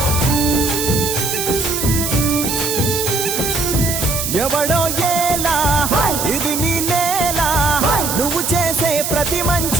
ఎవడో ఏలా ఇది నీ నేల నువ్వు చేసే ప్రతి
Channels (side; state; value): right; noise; hiss, 2 dB below the sound